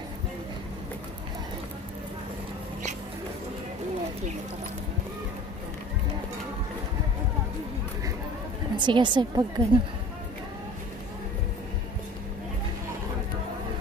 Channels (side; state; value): both; normal; correlation 0.43